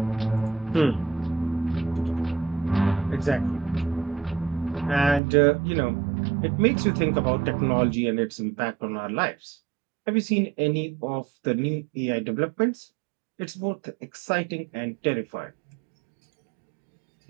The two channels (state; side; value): drops out; left; at 5.2 s